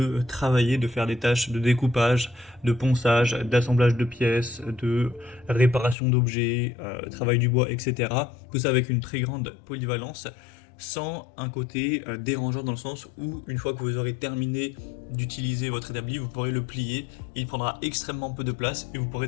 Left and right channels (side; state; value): right; drops out; at 6.0 s